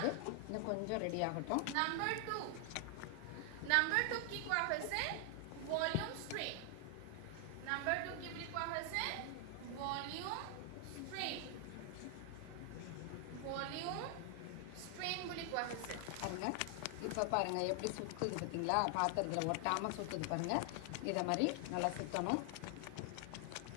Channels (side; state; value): both; different; correlation 0.00